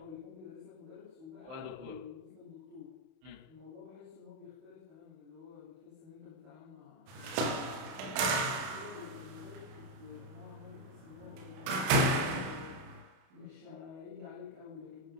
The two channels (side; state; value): left; late; 31 ms